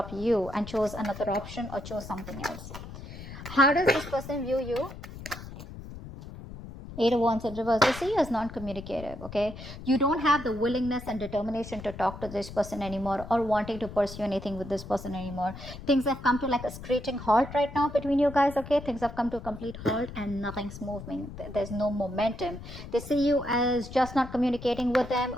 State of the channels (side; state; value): left; noise; rumble, 12 dB below the sound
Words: you and chose another option or chose something else. How does this person view you? Eight of Wands in reverse. They see you as non-communicative, okay? You don't have the willingness and determination to talk to this person anymore or wanting to pursue anything with this person anymore. Things have come to like a screeching halt right now between you guys, okay? Things have come to a complete halt and nothing's moving. There's no momentum. They see you as just not communicating with them,